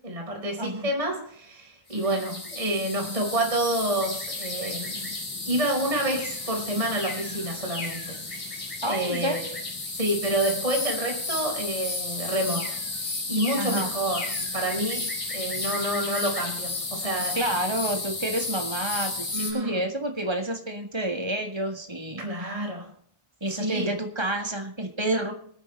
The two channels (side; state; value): left; late; 1.1 ms